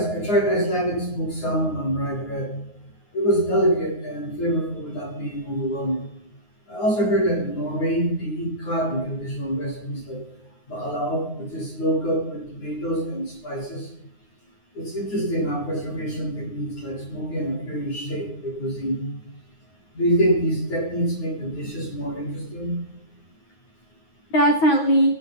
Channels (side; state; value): right; late; 9.6 ms